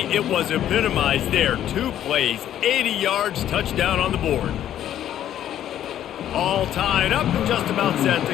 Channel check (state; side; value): quieter; right; 11.2 dB